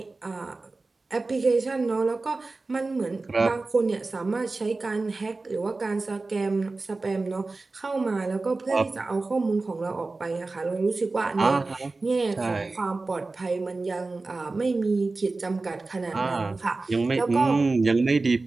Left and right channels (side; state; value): left; quieter; 3.5 dB